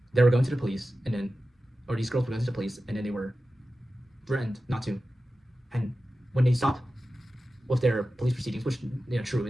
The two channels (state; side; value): normal; both; correlation 0.94